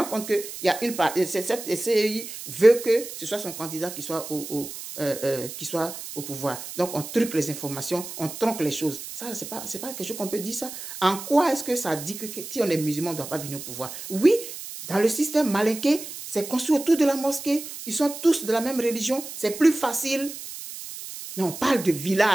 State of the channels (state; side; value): noise; right; hiss, 10 dB below the sound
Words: compte qu'il y a une part, cette CEI veut que ce soit son candidat qui soit au pouvoir. Donc, on truque les informations, on tronque les choses. Ça, c'est pas quelque chose qu'on peut dire ça. En quoi est-ce que ça dit que si on est musulman, on ne doit pas venir au pouvoir? Oui, dans le système malinqué, c'est construit autour de la mosquée. Ils sont tous de la même religion. C'est plus facile. Mais on parle de